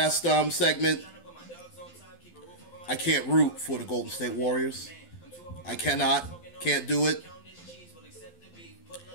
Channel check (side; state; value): right; late; 12 ms